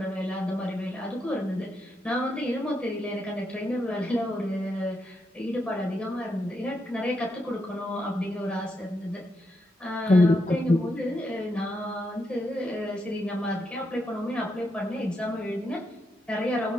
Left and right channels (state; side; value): normal; both; correlation 0.81